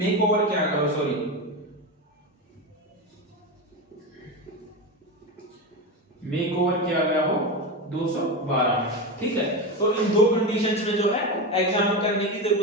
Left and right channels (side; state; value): both; normal; correlation 0.18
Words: ओवर क्या करो, सॉरी मेक ओवर किया गया हो 212 में। ठीक है, तो इन दो कंडीशंस में जो है एग्जाम करने की